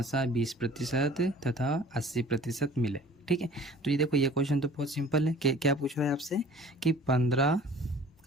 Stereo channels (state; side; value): normal; both; correlation 0.48